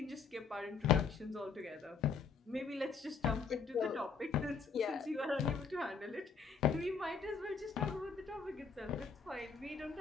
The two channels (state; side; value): quieter; right; 5.5 dB